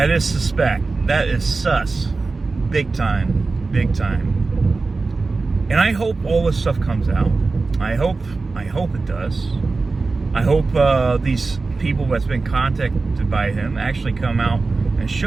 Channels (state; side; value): quieter; left; 3.9 dB